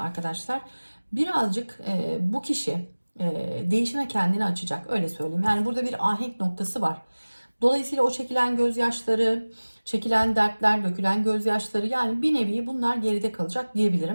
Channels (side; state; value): both; inverted; correlation -1.00